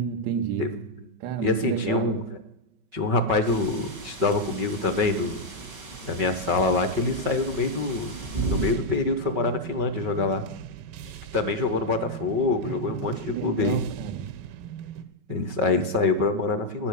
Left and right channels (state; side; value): late; left; 5.3 ms